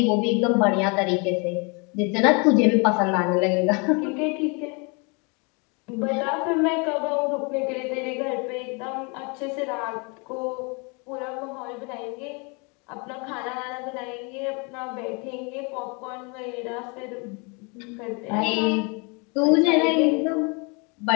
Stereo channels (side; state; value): right; quieter; 32.0 dB